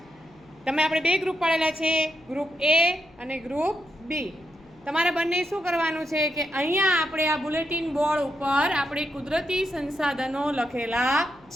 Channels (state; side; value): noise; left; hum, 28 dB below the sound